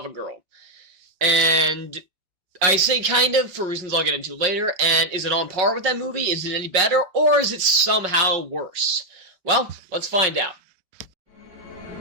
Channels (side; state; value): left; late; 5.4 ms